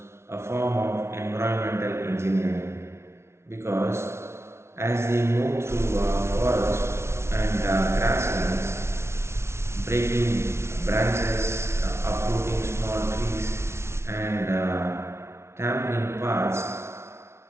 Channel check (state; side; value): late; left; 0.13 ms